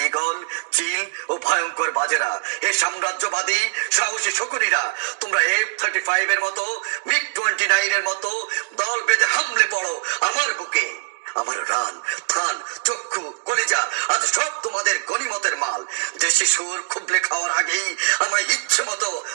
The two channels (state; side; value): quieter; left; 36.2 dB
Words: ঈগল, চিল ও ভয়ঙ্কর বাজেরা, হে সাম্রাজ্যবাদী সাহসী শকুনিরা, তোমরা F-35 এর মতো, MiG-29 এর মতো দল বেঁধে হামলে পড়ো আমার বুকে। আমার রান, থান, চক্ষু, কলিজা আজ সব তোমাদের গনিমতের মাল। দেশি সুর খুবলে খাওয়ার আগেই আমায় ইচ্ছে মতো